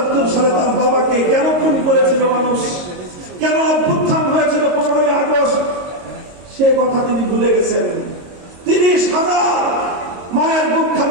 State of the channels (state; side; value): late; left; 22 ms